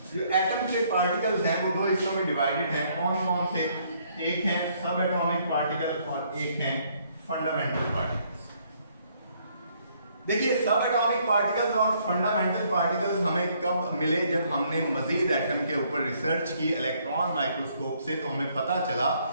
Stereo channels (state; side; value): inverted; both; correlation -0.67